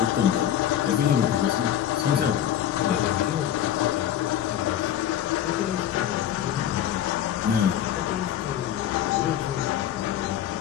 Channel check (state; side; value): quieter; right; 10.8 dB